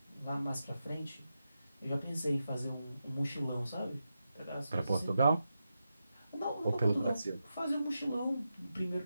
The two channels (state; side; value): inverted; both; correlation -0.89